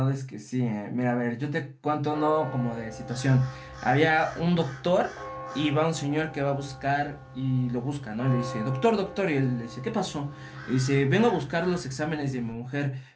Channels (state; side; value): identical; both; correlation 1.00